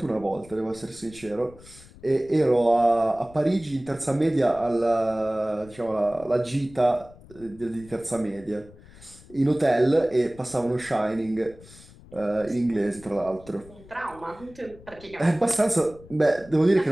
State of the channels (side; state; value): left; noise; rumble, 22 dB below the sound